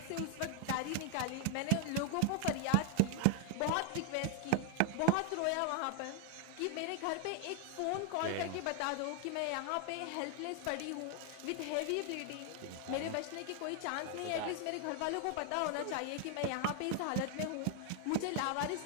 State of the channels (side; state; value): both; different; correlation 0.00